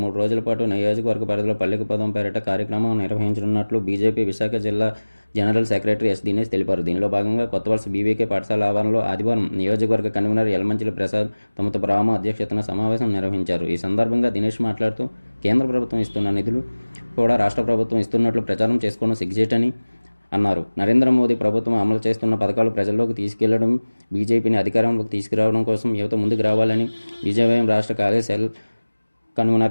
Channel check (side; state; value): both; inverted; correlation -1.00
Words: రోజుల పాటు నియోజకవర్గ పరిధిలో పల్లెకు పదం పేరిట కార్యక్రమం నిర్వహించనున్నట్లు బీజేపీ విశాఖ జిల్లా జనరల్ సెక్రటరీ ఎస్ దినేష్ తెలిపారు. దీనిలో భాగంగా కొత్తవలస బీవీకే పాఠశాల ఆవరణలో ఆదివారం నియోజకవర్గ కన్వీనర్ యలమంచిలి ప్రసాద్ తమతో రామ అధ్యక్షతన సమావేశం నిర్వహించారు. ఈ సందర్భంగా దినేష్ మాట్లాడుతూ కేంద్ర ప్రభుత్వం ఇస్తున్న నిధులు కూడా రాష్ట్ర ప్రభుత్వం ఇస్తున్నట్లు ప్రచారం చేసుకోవడం సిగ్గుచేటని అన్నారు. నరేంద్ర మోదీ ప్రభుత్వం అమలు చేస్తున్న పథకాలు ప్రజల్లోకి తీసుకెళ్లడం, బీజేపీని అధికారంలోకి తీసుకురావడం కోసం యువత ముందుకు రావాలని బీజేవైఎం రాష్ట్ర కార్యశాల